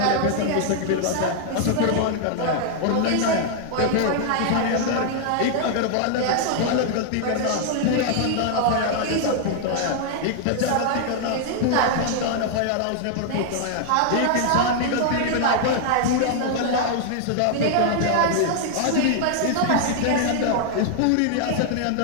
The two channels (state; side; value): different; both; correlation 0.00